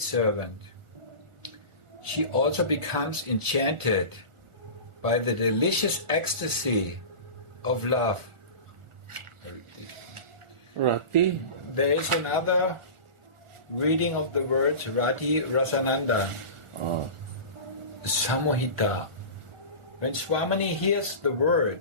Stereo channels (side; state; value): left; late; 1.4 ms